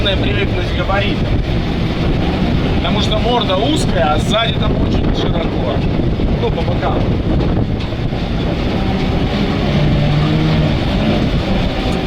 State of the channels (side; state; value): both; identical; correlation 1.00